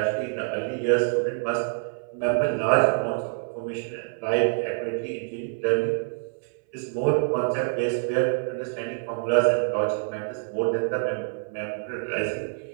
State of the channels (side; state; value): left; silent; 58 dB below the other